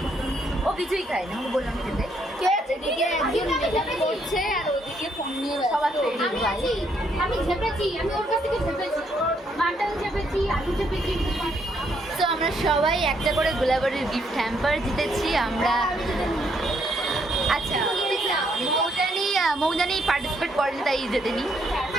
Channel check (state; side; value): normal; both; correlation 0.72